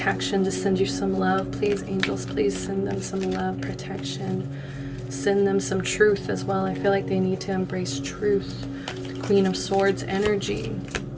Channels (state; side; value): identical; both; correlation 1.00